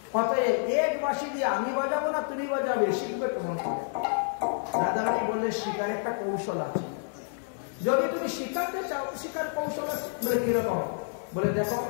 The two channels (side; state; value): right; silent; digital silence